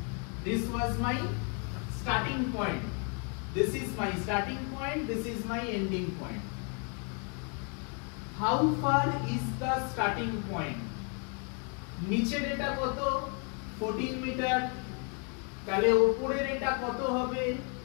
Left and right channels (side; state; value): right; quieter; 37.0 dB